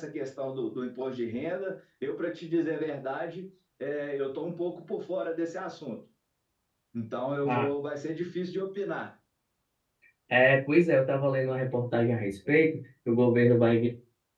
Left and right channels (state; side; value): identical; both; correlation 1.00